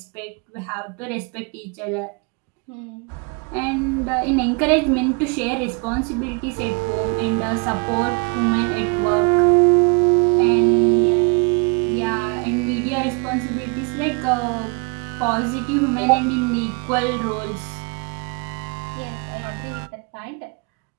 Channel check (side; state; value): left; quieter; 33.3 dB